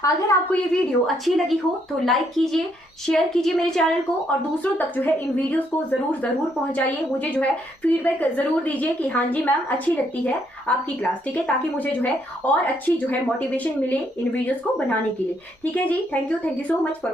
अगर आपको ये वीडियो अच्छी लगी हो तो लाइक कीजिए, शेयर कीजिए मेरे चैनल को और दूसरों तक जो है इन वीडियोस को जरूर पहुंचाइए। मुझे जो है फीडबैक जरूर दीजिए कि हाँ जी मैम अच्छी लगती है आपकी क्लास। ठीक है, ताकि मुझे जो है और अच्छी जो है मोटिवेशन मिले इन वीडियोस को बनाने के लिए। ठीक है जी, thank you so much for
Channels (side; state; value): both; normal; correlation 0.72